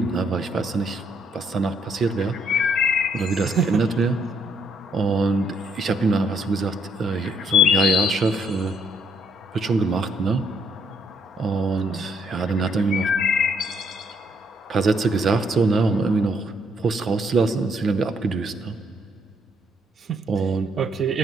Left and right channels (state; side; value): normal; both; correlation 0.69